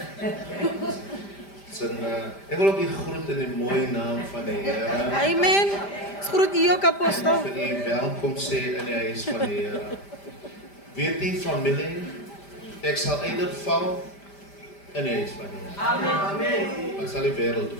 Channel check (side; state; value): right; late; 5.1 ms